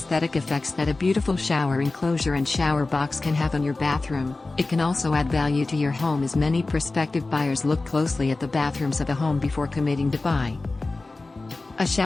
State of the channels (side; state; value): right; quieter; 3.4 dB